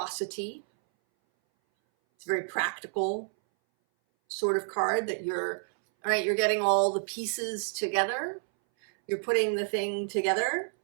It's a very practical sort of card that you're, all right, you're getting all the pieces together. You're putting the thing together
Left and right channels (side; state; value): left; silent; 58 dB below the other